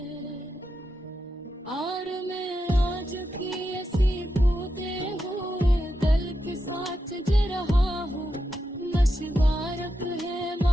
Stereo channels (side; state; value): both; normal; correlation 0.86